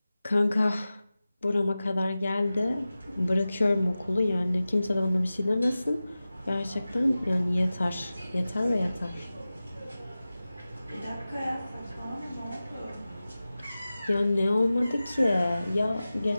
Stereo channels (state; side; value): inverted; both; correlation -0.96